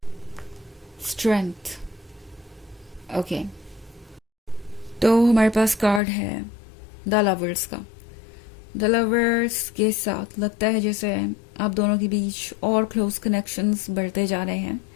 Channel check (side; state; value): right; drops out; at 6.0 s